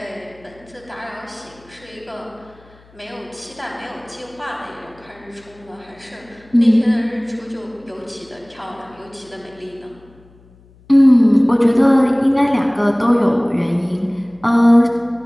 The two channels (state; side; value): noise; left; hum, 28 dB below the sound